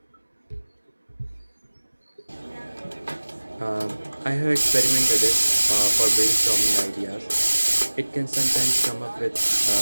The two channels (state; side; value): inverted; both; correlation -1.00